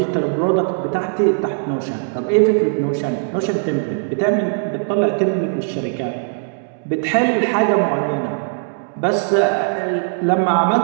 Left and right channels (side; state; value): left; silent; digital silence